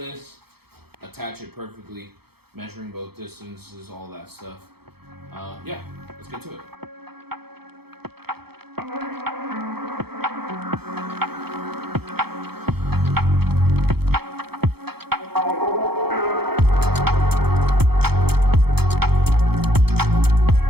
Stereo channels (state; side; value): late; left; 0.96 ms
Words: attach it perfectly, measuring both distances, all that stuff. Yeah, let's get to it.